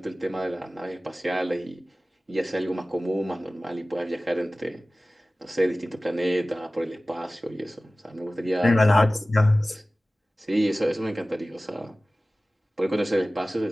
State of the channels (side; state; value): both; normal; correlation 0.97